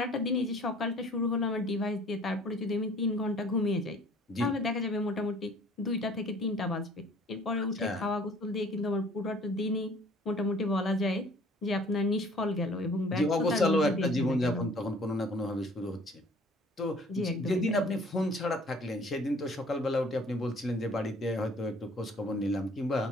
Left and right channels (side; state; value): both; normal; correlation 0.53